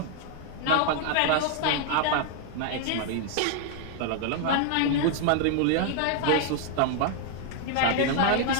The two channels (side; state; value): both; different; correlation 0.00